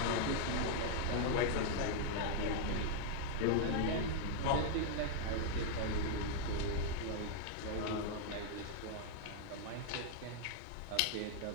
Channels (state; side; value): different; both; correlation 0.00